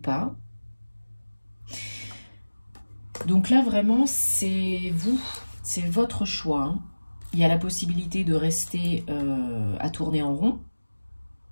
Donc là, vraiment, c'est vous, c'est votre choix. Hein. Il y a la possibilité de rester à tourner en rond,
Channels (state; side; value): inverted; both; correlation -1.00